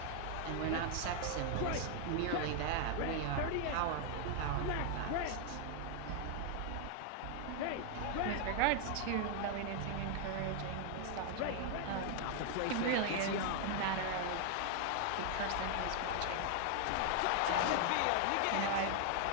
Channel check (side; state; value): both; different; correlation 0.00